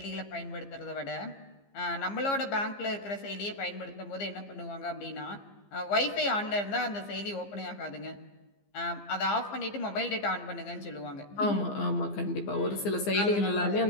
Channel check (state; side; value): late; right; 15 ms